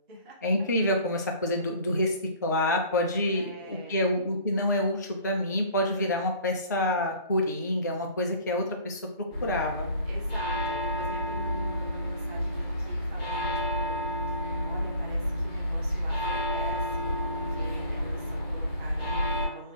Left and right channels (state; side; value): inverted; both; correlation -0.48